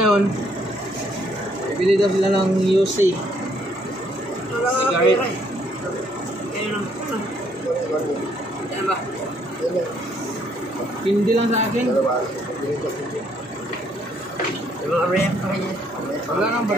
bibili daw sila ng UC. Cigarette. Yan ba? Hindi lang sa akin. Wala nang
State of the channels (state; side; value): normal; both; correlation 0.68